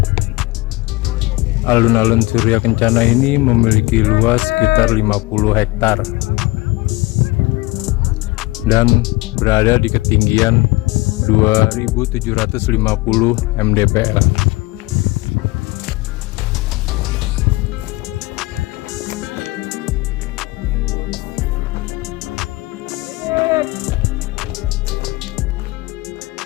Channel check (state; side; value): quieter; right; 21.8 dB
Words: Alun-alun Surya Kencana ini memiliki luas sekitar 50 hektar dan berada di ketinggian 2750 mdpl.